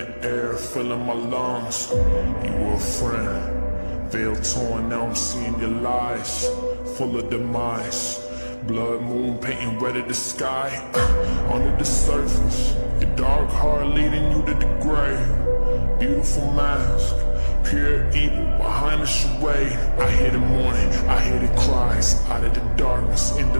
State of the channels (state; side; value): inverted; both; correlation -1.00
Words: air, filling my lungs. You were a friend, veil torn, now I'm seeing your lies, full of demise. Blood moon painting red at the sky. Under the surface, your dark heart leading you to the grave. Beautiful mask, pure evil behind the charade. I hear the mourning, I hear the cries. Out of the darkness, into